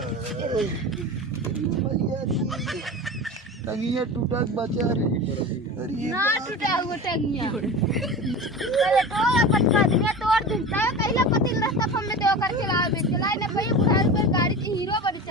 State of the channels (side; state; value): both; normal; correlation 0.30